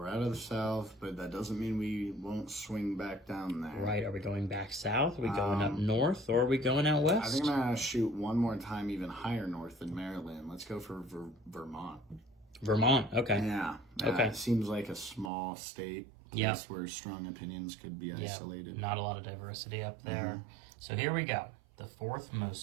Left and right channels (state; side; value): drops out; left; at 15.3 s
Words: out of the South, but that doesn't mean we won't swing back down there. Right, are we going back south? Are we going up north? Or are we going out west? I think I'm going to shoot one more time even higher north than Maryland. Let's go for Vermont. Vermont, okay. Yeah. Okay. It seems like a small state. Yeah. Place where strong opinions could be isolated. Not a lot of diversity up there. So here we go. The 4th